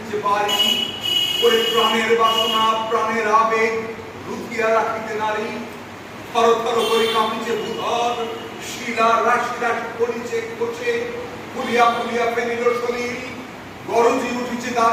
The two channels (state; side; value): identical; both; correlation 1.00